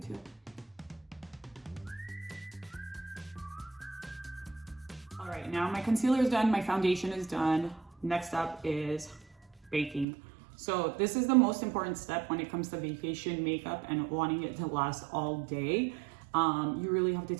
All right, now my concealer is done, my foundation is done. Next up is baking. So this is the most important step when it comes to vacation makeup and wanting it to last all day. You really have to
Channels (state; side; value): drops out; left; at 10.1 s